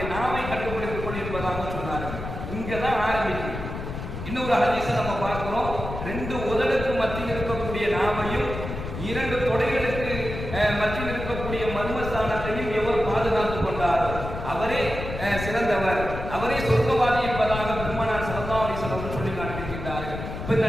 நாவை கட்டுப்படுத்திக் கொண்டிருப்பதாக சொன்னார்கள். இங்கதான் ஆரம்பிக்கும். இன்னொரு ஹதீஸை நம்ம பார்க்கிறோம். 2 உதடுக்கு மத்தியில் இருக்கக்கூடிய நாவையும் 2 தொடைகளுக்கு மத்தியில் இருக்கக்கூடிய மர்மஸ்தானத்தையும் எவர் பாதுகாத்துக் கொண்டாரோ அவரே சிறந்தவர், அவரே சொர்க்கவாதி என்பதாக பெருமானார் ஸல்லல்லாஹு அலைஹி வஸல்லம் சொல்லி காண்பிக்கின்றார்கள். இப்ப இந்த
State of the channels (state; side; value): noise; left; rumble, 7 dB below the sound